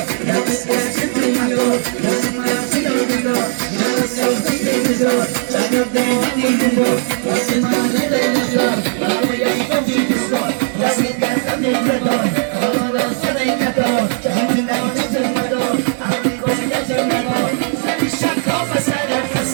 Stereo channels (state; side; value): silent; left; 55 dB below the other